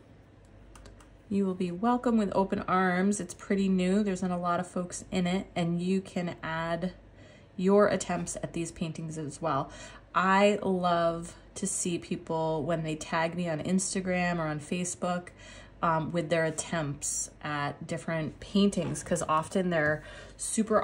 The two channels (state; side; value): identical; both; correlation 1.00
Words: You will be welcome with open arms. It's pretty new. There's not a lot of folks in it, and you can add your attempts at these paintings as well. I love to see people when they tag me on Instagram or on Facebook with their attempts at different paintings, because often they're